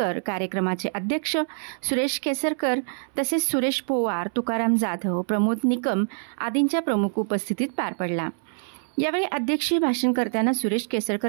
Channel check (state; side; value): silent; left; 62 dB below the other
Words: कार्यक्रमाचे अध्यक्ष सुरेश केसरकर तसेच सुरेश पोवार, तुकाराम जाधव, प्रमोद निकम आदींच्या प्रमुख उपस्थितीत पार पडला. यावेळी अध्यक्षीय भाषण करताना सुरेश